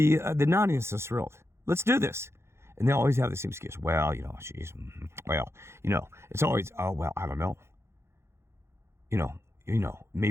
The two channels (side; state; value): left; late; 0.13 ms